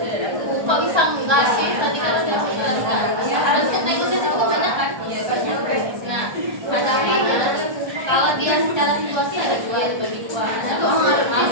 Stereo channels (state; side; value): late; left; 1.3 ms